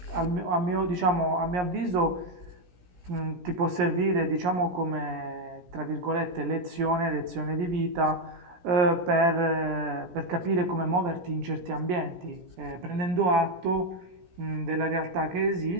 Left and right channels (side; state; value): left; late; 17 ms